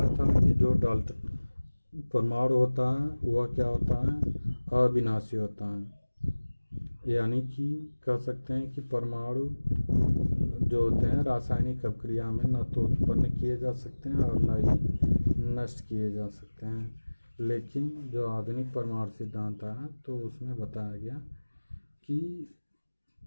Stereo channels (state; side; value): inverted; both; correlation -1.00